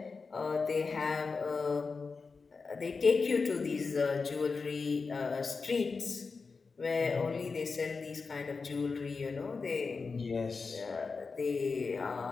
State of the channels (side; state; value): right; quieter; 4.6 dB